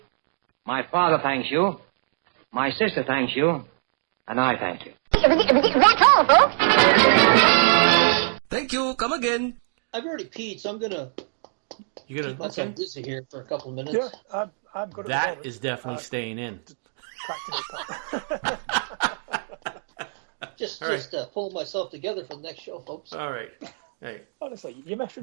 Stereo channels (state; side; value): silent; left; digital silence